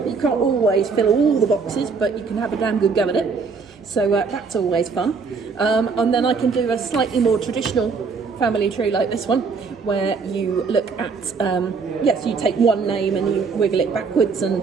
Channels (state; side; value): quieter; left; 5.0 dB